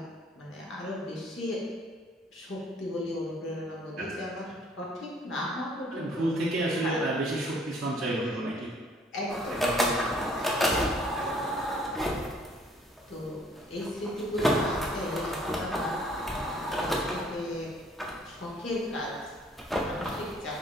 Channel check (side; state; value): both; normal; correlation 0.59